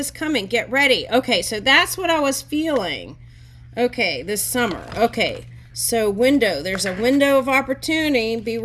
coming. Get ready. Okay, so that's what I was feeling. Okay, this summer. Okay, so window. There's a window of opportunity. Be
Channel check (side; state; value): both; identical; correlation 1.00